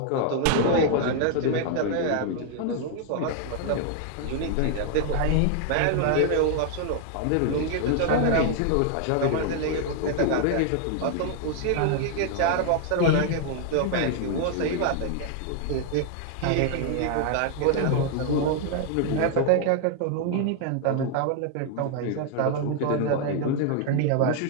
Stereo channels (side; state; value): both; different; correlation 0.00